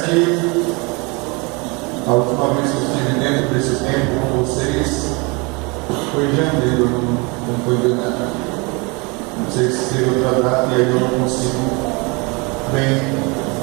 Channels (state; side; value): quieter; left; 28.9 dB